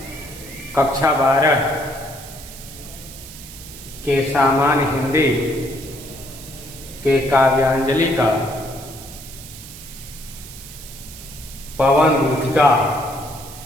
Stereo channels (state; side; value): noise; right; hiss, 15 dB below the sound